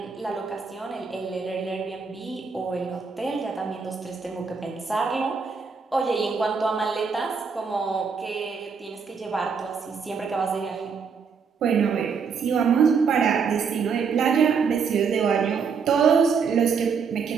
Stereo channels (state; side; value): quieter; left; 5.8 dB